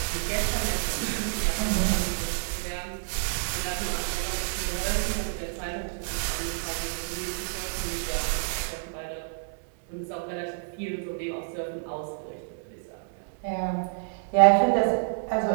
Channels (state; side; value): silent; left; digital silence